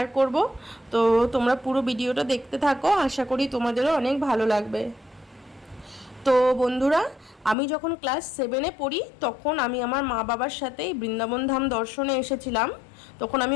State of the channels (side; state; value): right; drops out; at 7.6 s